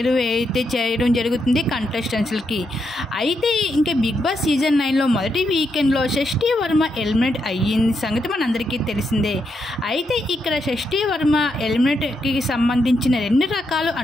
అయితే చేయడం జరుగుతుంది కంటెస్టెంట్స్కి. అయితే ఇంకా బిగ్ బాస్ సీజన్ 9లో మొదటి వీకెండ్లో షష్ఠీ వర్మ ఎలిమినేట్ అయ్యింది సంగతి మనందరికీ తెలిసిందే. అయితే ఇక్కడ షష్ఠీ వర్మ ఎలిమినేట్కి సంబంధించిన రెండు రకాలు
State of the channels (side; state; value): both; normal; correlation 0.81